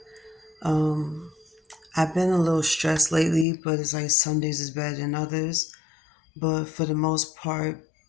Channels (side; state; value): right; drops out; at 3.5 s